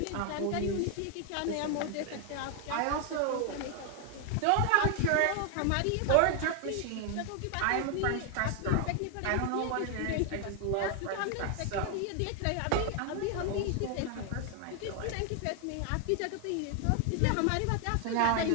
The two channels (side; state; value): both; different; correlation 0.00